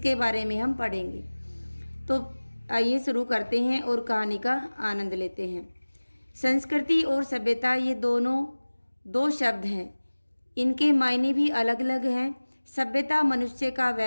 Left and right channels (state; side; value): inverted; both; correlation -1.00